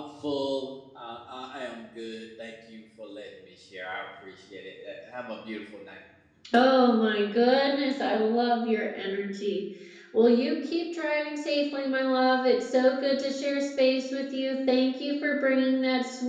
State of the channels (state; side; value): identical; both; correlation 1.00